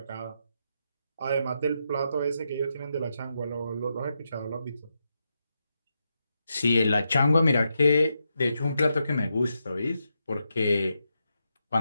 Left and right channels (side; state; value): both; inverted; correlation -0.84